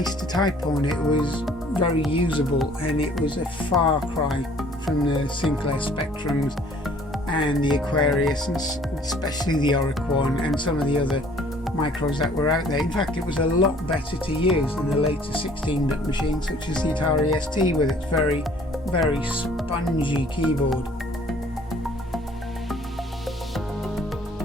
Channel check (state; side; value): normal; both; correlation 0.56